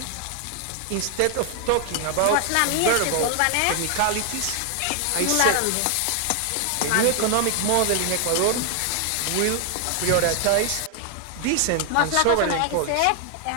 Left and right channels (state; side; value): different; both; correlation 0.00